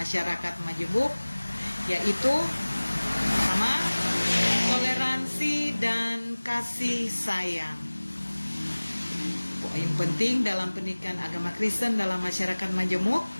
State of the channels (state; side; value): inverted; both; correlation -1.00